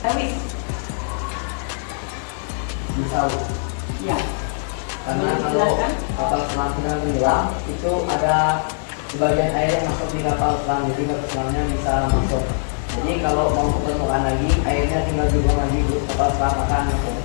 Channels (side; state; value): right; silent; digital silence